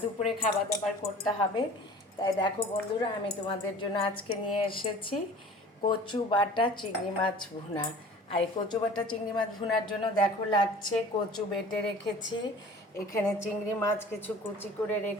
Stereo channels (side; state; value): both; normal; correlation 0.44